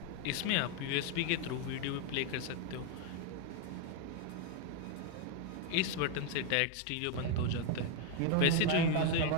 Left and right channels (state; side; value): different; both; correlation 0.01